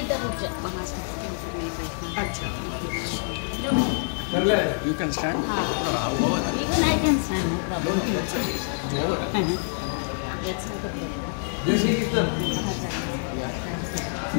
रुक जा. अच्छा You can stand. even I can stand. This is the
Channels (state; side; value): silent; right; 61 dB below the other